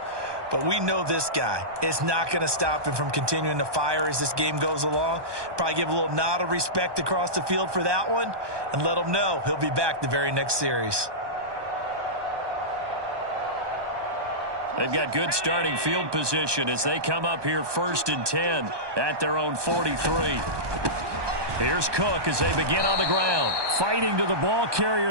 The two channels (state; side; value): late; left; 1.2 ms